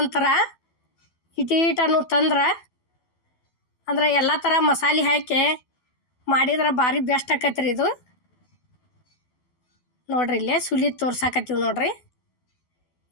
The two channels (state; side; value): late; right; 12 ms